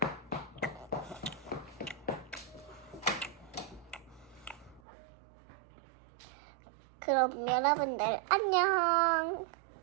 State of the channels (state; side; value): drops out; left; at 4.8 s